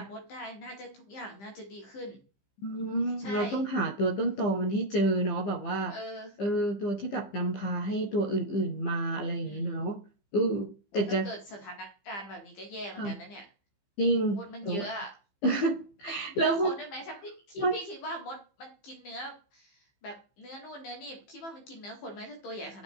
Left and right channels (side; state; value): right; late; 15 ms